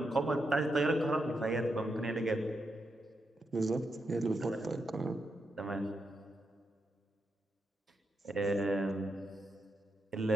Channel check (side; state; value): both; normal; correlation 0.84